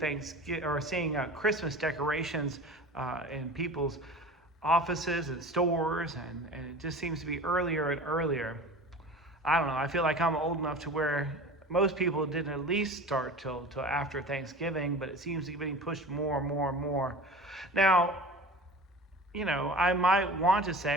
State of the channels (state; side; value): normal; both; correlation 0.37